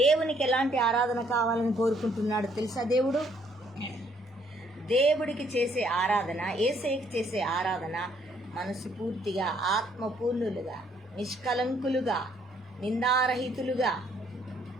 ఎలాంటి ఆరాధన కావాలని కోరుకుంటున్నాడు తెలుసా? దేవుడికి చేసే ఆరాధన, యేసయ్యకి చేసే ఆరాధన మనసు పూర్తిగా ఆత్మపూర్ణులుగా, నిష్కలంకులుగా, నిందారహితులుగా,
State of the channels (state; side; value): normal; both; correlation 0.66